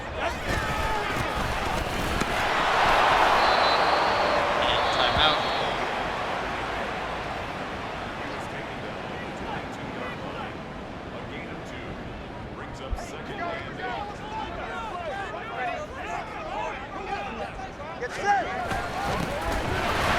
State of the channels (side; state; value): both; identical; correlation 1.00